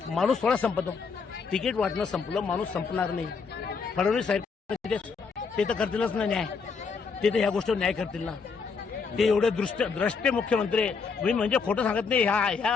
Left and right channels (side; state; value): right; quieter; 5.2 dB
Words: थोडा संपतो. तिकीट वाटणं संपलं, माणूस संपणार नाही. फडणवीस साहेब ते तर करतीलच ना न्याय. ते तर ह्या गोष्टीवर न्याय करतील ना. ते एवढे द्रष्टे मुख्यमंत्री आहे. मी म्हणजे खोटं सांगत नाही.